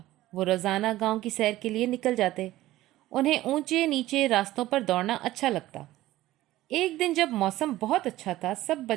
वो रोज़ाना गांव की सैर के लिए निकल जाते। उन्हें ऊंचे नीचे रास्तों पर दौड़ना अच्छा लगता। एक दिन जब मौसम बहुत अच्छा था, सब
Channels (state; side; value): quieter; left; 15.9 dB